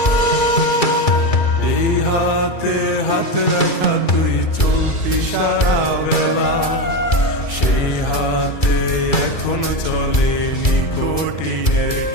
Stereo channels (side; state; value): right; late; 2.3 ms